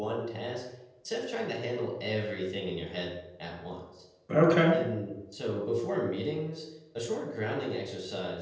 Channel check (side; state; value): both; identical; correlation 1.00